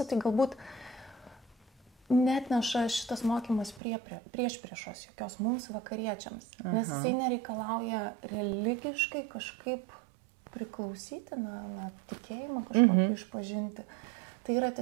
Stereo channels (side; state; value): left; drops out; at 3.8 s